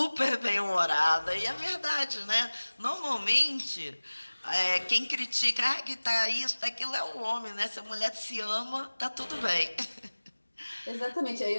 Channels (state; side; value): inverted; both; correlation -1.00